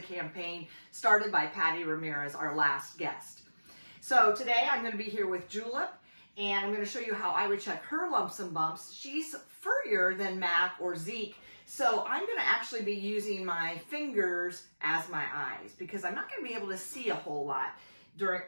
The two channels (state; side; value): inverted; both; correlation -1.00